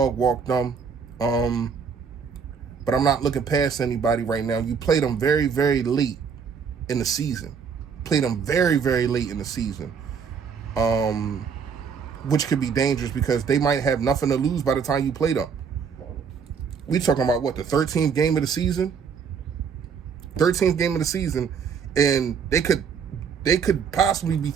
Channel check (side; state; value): left; quieter; 6.3 dB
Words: walk them. But I'm not looking past anybody right now. You played them very, very late in the season. Played them very, very late in the season. Which could be dangerous because they might have nothing to lose by the time you play them. We talking about what, the 13th game of the season? 13th game of the season, and they could possibly be